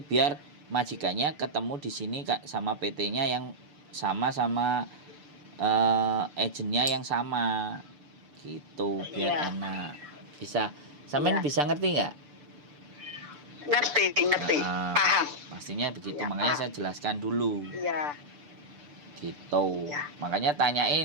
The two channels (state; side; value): late; left; 6.8 ms